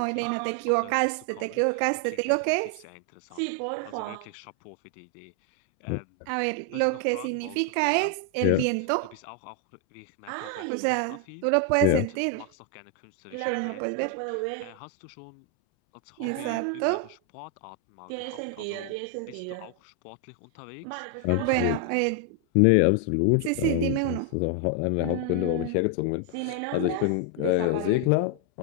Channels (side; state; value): both; different; correlation 0.00